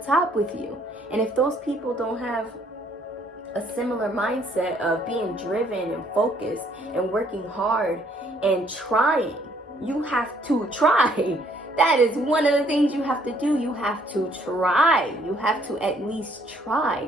with you. And if those people don't have a similar mindset of being driven and focused and working hard and trying, you have to try. That is one of the things you have to do. You have to try. You have to at least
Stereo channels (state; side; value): normal; both; correlation 0.65